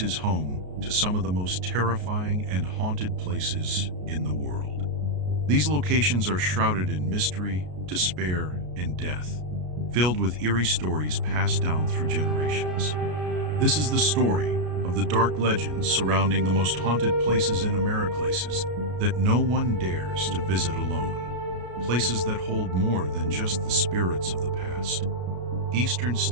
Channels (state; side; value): late; left; 33 ms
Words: is home to some of the most terrifying and haunted places in the world. These locations are shrouded in mystery, despair, and death, filled with eerie stories passed down through generations. This is the story of the dark legends surrounding the most haunted places in America, places that no one dares to visit alone. Places that hold more than just the spirits of the past. Eastern